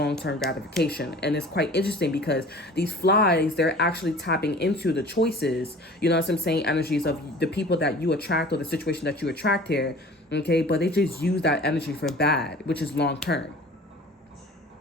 gratification. And it's quite interesting because these flies, they're actually tapping into the choices, you know what I'm saying, energies of the people that you attract or the situation that you attract here. Okay, but they just use that energy for bad, which is long-term.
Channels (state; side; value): normal; both; correlation 0.44